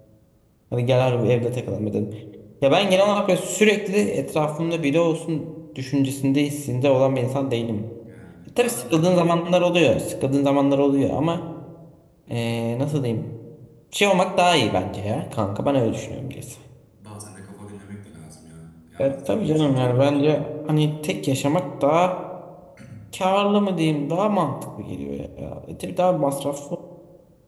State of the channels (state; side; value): identical; both; correlation 1.00